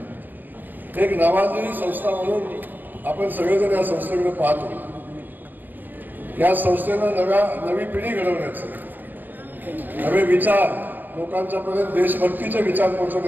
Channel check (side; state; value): left; late; 0.090 ms